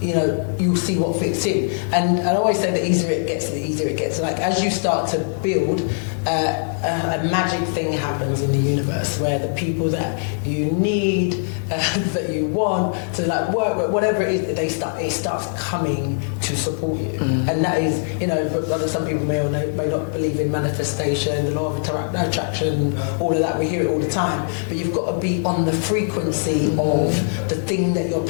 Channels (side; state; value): right; silent; digital silence